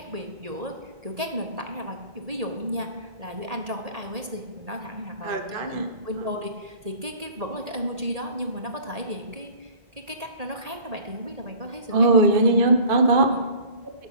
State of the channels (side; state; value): left; late; 1.8 ms